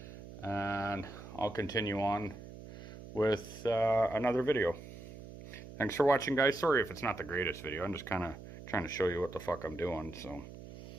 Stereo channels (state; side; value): noise; right; hum, 14 dB below the sound